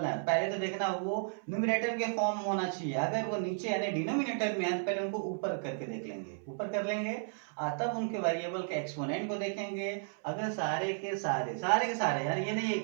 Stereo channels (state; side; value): silent; left; 55 dB below the other